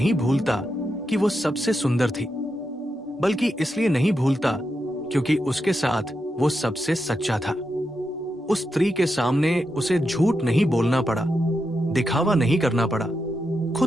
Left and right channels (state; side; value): normal; both; correlation 0.86